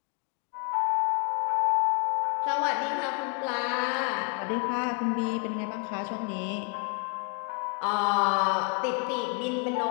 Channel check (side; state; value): right; quieter; 35.2 dB